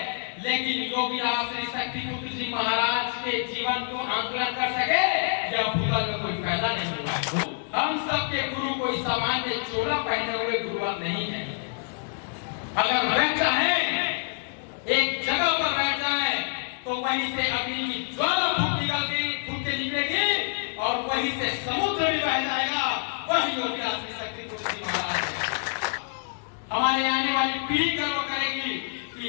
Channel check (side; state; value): right; silent; 60 dB below the other